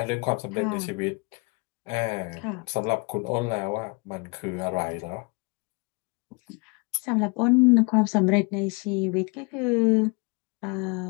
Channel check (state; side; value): quieter; right; 29.6 dB